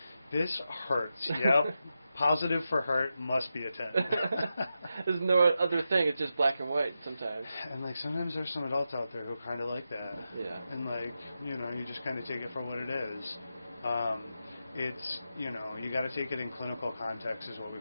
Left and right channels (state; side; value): inverted; both; correlation -0.89